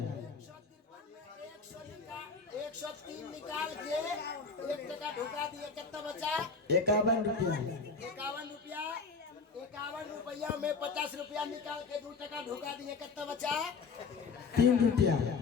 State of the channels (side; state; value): right; quieter; 4.7 dB